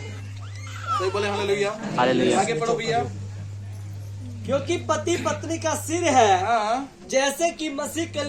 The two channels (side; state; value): both; identical; correlation 1.00